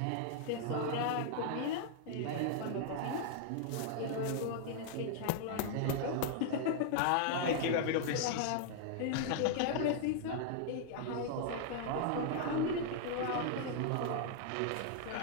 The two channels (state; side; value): different; both; correlation 0.00